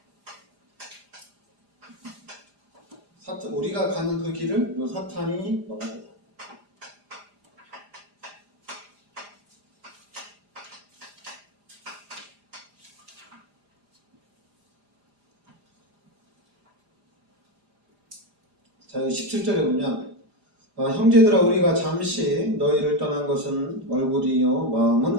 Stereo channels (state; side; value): late; left; 4.9 ms